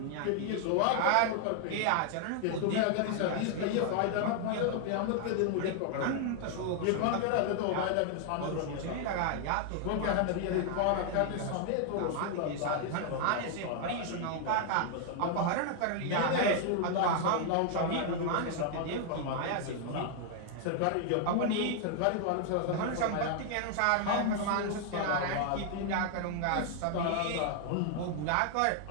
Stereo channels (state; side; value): different; both; correlation 0.00